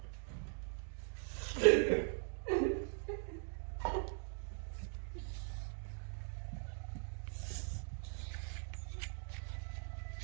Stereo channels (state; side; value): silent; left; 50 dB below the other